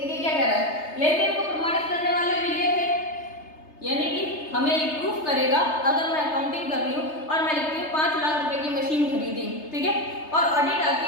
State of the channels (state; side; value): late; right; 3.3 ms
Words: क्या कह रहा है, लेन देन को प्रमाणित करने वाले विलेख है, यानी कि हमें ये प्रूफ करेगा। अगर मैं अकाउंटिंग कर रही हूँ और मैं लिखती हूँ 5 लाख रुपए की मशीन खरीदी, ठीक है, और ऑडिट आती